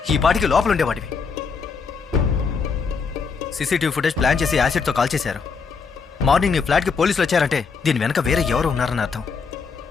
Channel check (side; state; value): right; quieter; 5.3 dB